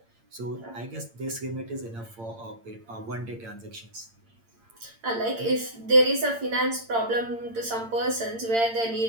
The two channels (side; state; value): left; late; 8.8 ms